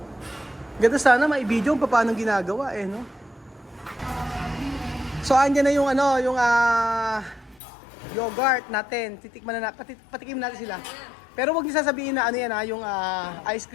ganda sana mai-video kung paano ginagawa no. So andyan na yung yogurt natin. Titikman na patikim natin sila. Pero wag niyo sasabihin na yan yung ice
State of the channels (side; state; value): right; drops out; at 7.6 s